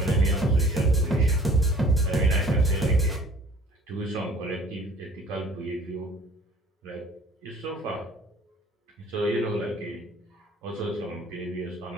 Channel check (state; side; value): normal; both; correlation 0.52